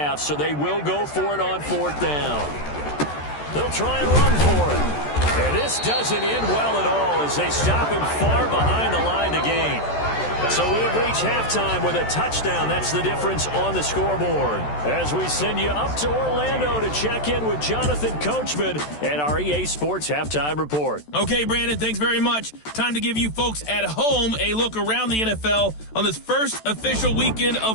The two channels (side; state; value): right; late; 14 ms